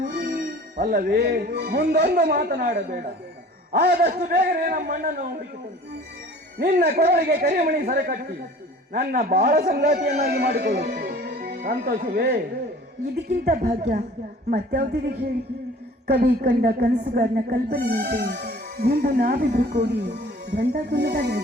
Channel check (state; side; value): normal; both; correlation 0.47